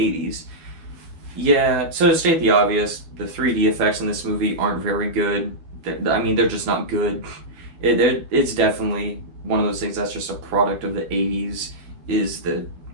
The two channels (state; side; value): late; left; 12 ms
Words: Yeah, so to state the obvious, the 3D effects in this movie aren't very good. I mean, they're just not good. It's definitely one of those things that's just a product of the 80s, is the